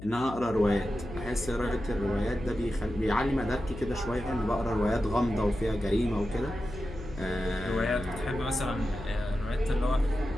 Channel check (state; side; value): noise; left; hum, 13 dB below the sound